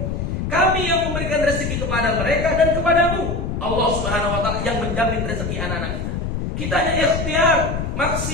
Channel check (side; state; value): left; noise; rumble, 3 dB below the sound